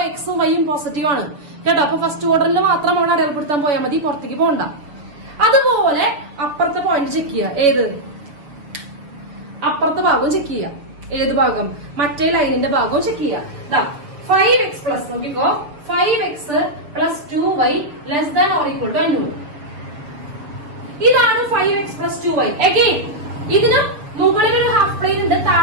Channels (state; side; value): late; left; 6.8 ms